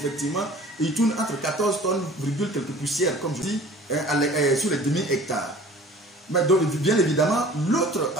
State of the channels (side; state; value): both; normal; correlation 0.47